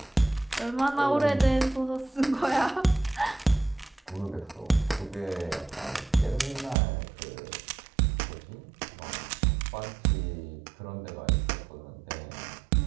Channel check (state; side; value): drops out; left; at 6.8 s